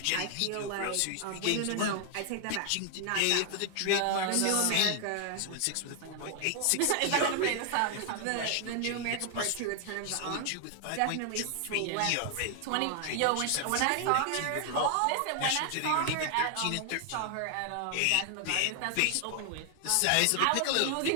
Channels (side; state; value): both; different; correlation 0.00